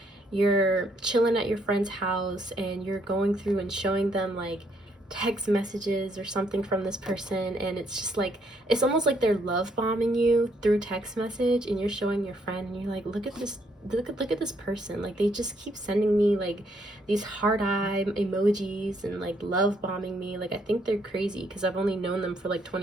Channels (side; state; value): both; normal; correlation 0.71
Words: you're chilling at your friend's house and you're going through and showing them like text messages or something from this person, and it's just like, it's almost like they're love bombing you through text message, and you're showing your friend and you're like, look at this person, like they just keep sending me like these heart eye emojis and like love bombing me, like I think they're crazy because I've only known them for like